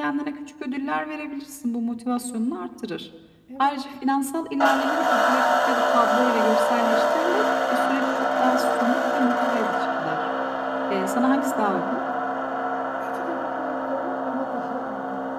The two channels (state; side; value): identical; both; correlation 1.00